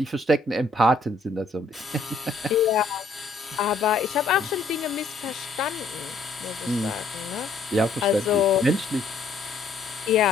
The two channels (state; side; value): quieter; right; 3.6 dB